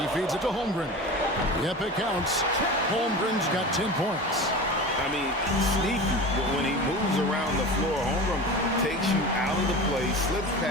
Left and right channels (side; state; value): both; normal; correlation 0.31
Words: feeds it to Holmgren. Yep, it counts. Holmgren's got 10 points. I mean, sneaky, but when he moves around the floor, Holmgren takes you out of the play, slips